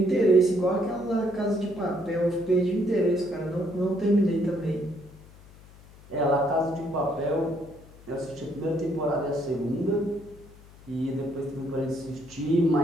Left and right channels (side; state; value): left; noise; hum, 22 dB below the sound